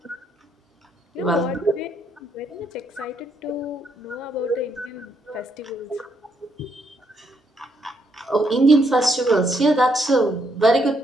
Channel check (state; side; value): normal; both; correlation 0.75